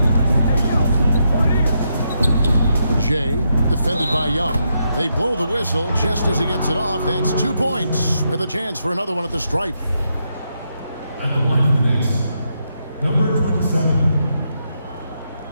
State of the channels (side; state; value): both; inverted; correlation -0.81